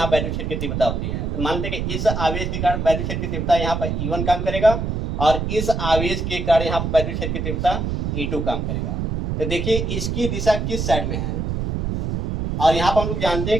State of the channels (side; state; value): right; noise; rumble, 2 dB below the sound